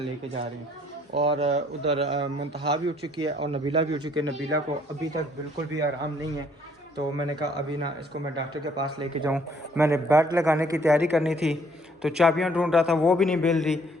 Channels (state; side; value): normal; both; correlation 0.63